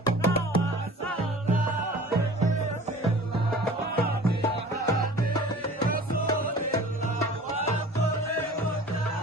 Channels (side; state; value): both; normal; correlation 0.44